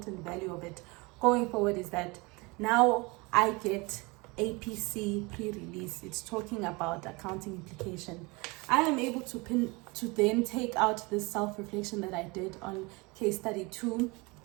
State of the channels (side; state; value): left; quieter; 26.2 dB